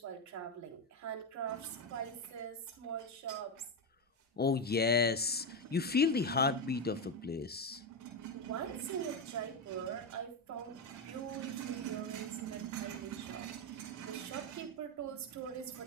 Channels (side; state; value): both; normal; correlation 0.11